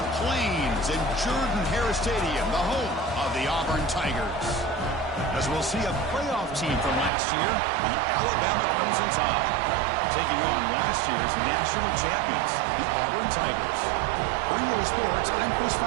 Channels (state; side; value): drops out; left; at 7.1 s